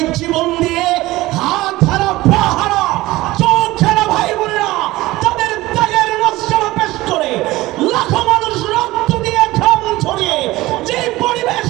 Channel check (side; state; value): left; quieter; 18.6 dB